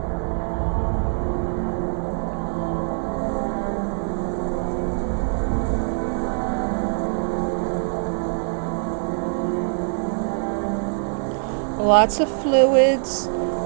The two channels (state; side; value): silent; left; 63 dB below the other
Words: Lots of fluids,